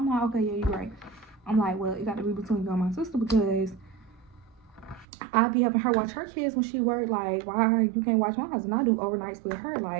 like, okay, yeah, you're right. I'm like, well, it got to be between you and my sister because I be helping her watch her kids when she work. Like, why you can't watch mine? And I do overnights with her.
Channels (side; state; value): left; drops out; at 5.1 s